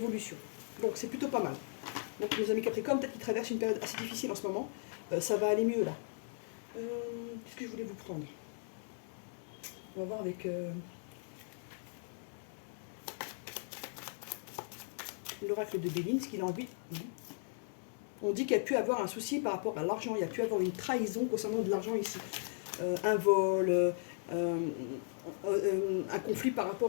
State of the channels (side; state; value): right; silent; digital silence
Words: Donc c'est plutôt pas mal. Donc nos amis Capricorne, peut-être qu'ils traversent une période assez difficile en ce moment. Ça va aller mieux là. Qu'est-ce que je voulais vous prendre? On va voir avec... l'oracle de Béline, ce qu'il a envie. On dit qu'il y a pu avoir un souci par rapport à l'argent. Il y a pu avoir une trahison concernant de l'argent ici. Un vol, un conflit par